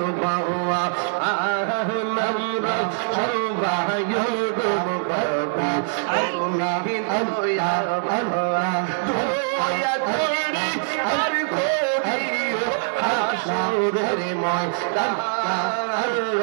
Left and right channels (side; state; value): left; silent; digital silence